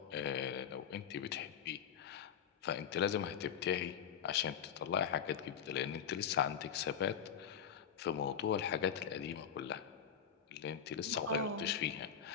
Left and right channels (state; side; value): quieter; right; 8.2 dB